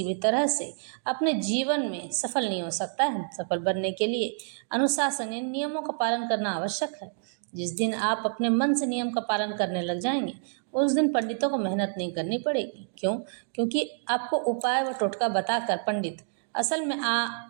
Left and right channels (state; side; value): silent; left; digital silence